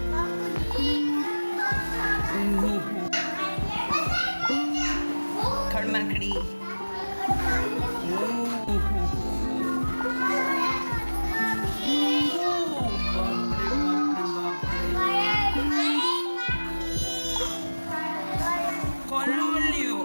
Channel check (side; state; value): both; inverted; correlation -1.00